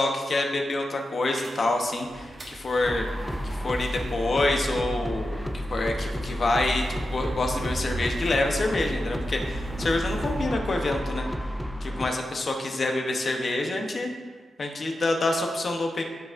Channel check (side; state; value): both; normal; correlation 0.90